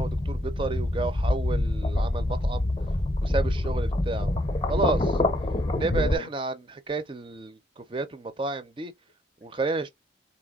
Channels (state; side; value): normal; both; correlation 0.72